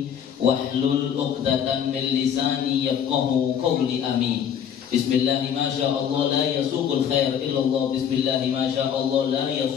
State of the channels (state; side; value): quieter; right; 8.5 dB